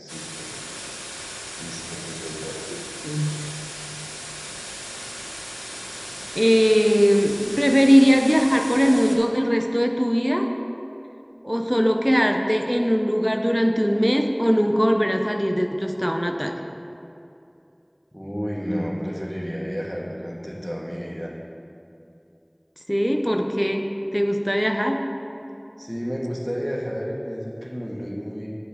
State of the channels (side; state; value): both; identical; correlation 1.00